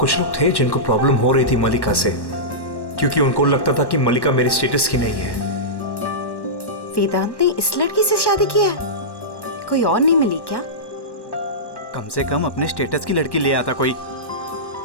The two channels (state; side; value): late; right; 1.1 ms